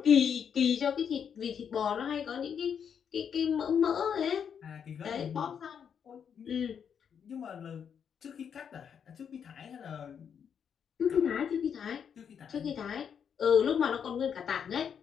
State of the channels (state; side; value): quieter; right; 7.6 dB